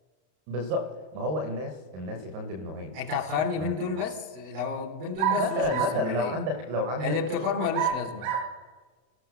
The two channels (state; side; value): late; left; 32 ms